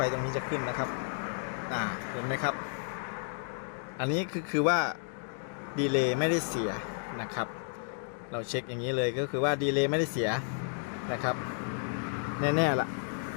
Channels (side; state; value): right; silent; digital silence